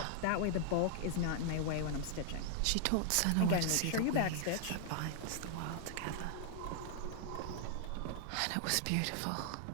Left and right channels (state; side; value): different; both; correlation 0.00